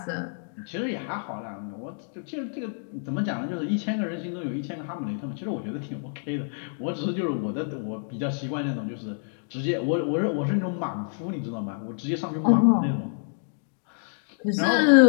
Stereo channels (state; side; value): silent; right; digital silence